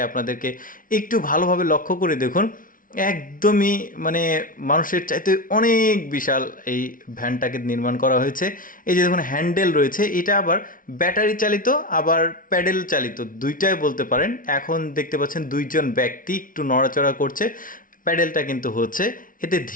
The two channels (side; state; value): right; late; 0.39 ms